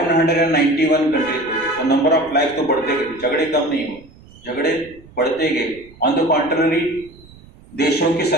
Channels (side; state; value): right; noise; rumble, 23 dB below the sound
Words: कंट्रीज हो गए। तो नंबर ऑफ लाइफ तो बढ़ते गए, झगड़े कम नहीं हुए, झगड़े बढ़ते गए। ऑन द कॉन्ट्ररी देशों की